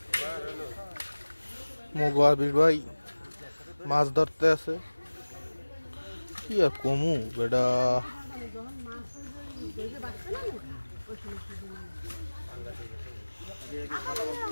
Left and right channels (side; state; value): both; inverted; correlation -1.00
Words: মোবাবির ভাই মাছ ধরতে আছে কি আর কমু বেটা